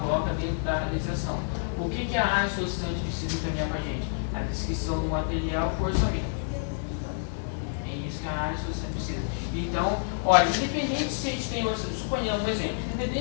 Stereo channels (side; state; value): right; silent; digital silence